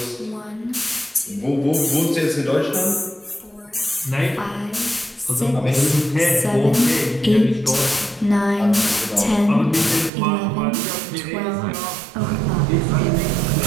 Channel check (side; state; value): left; drops out; at 10.1 s